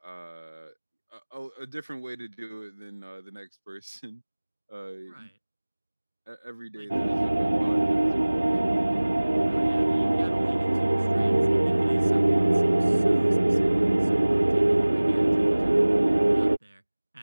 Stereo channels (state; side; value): inverted; both; correlation -1.00